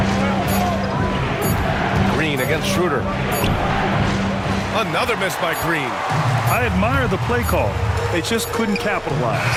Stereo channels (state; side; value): identical; both; correlation 1.00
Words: Green against Schroeder. Another miss by Green. I admire the play call. They just couldn't capitalize.